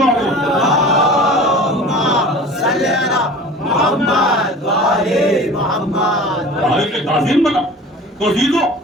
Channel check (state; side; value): normal; both; correlation 0.40